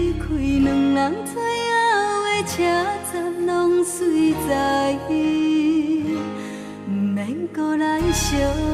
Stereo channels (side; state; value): both; identical; correlation 1.00